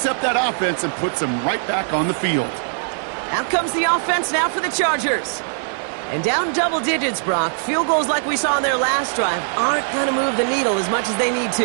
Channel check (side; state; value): left; silent; digital silence